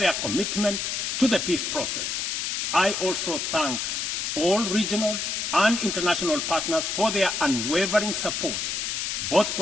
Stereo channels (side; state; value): left; noise; hiss, 1 dB below the sound